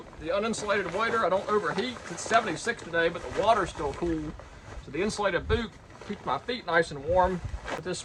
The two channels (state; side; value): identical; both; correlation 1.00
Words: the uninsulated wader. I don't overheat. It's 76 today, but the water's still cool. So the insulated boot keeps my feet nice and warm. But this